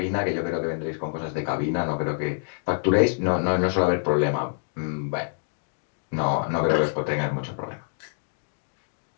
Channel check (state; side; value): silent; right; digital silence